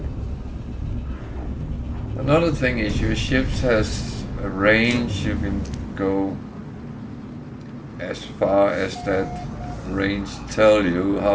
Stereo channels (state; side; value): identical; both; correlation 1.00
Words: Another thing is your ships has a range. You can go as far as that range tell you.